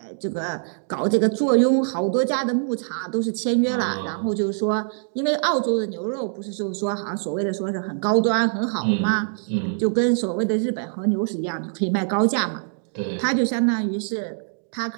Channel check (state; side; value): silent; left; digital silence